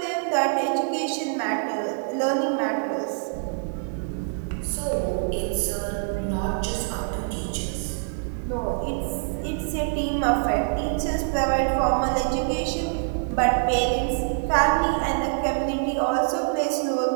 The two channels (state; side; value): silent; left; digital silence